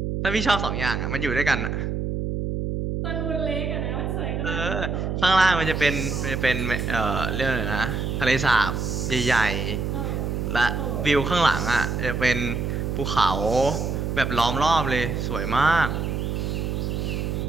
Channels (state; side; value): noise; right; hum, 2 dB below the sound